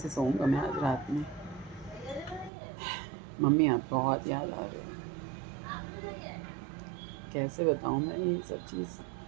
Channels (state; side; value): drops out; left; at 2.5 s